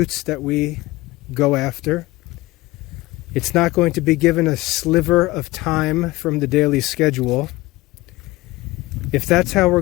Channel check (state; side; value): quieter; right; 19.6 dB